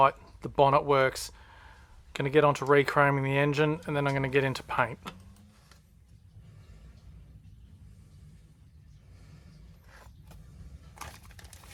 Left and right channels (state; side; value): identical; both; correlation 1.00